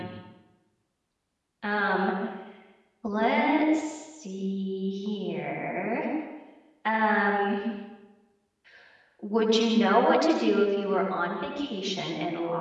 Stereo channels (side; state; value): both; identical; correlation 1.00